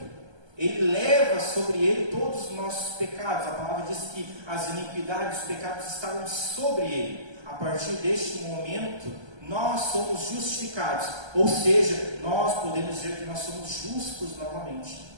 ele leva sobre ele todos os nossos pecados. A palavra diz que as iniquidades, os pecados estavam sobre ele. A partir deste momento, nós somos justificados, ou seja, nós podemos dizer que nós somos justos novamente,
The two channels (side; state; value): left; late; 1.3 ms